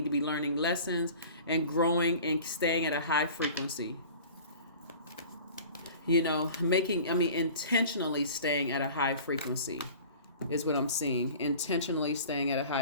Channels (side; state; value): both; inverted; correlation -0.42